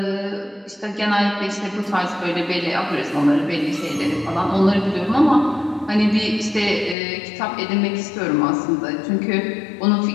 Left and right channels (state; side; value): drops out; right; at 7.0 s